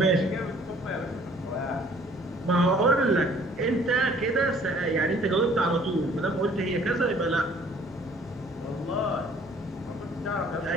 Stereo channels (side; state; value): left; noise; hum, 24 dB below the sound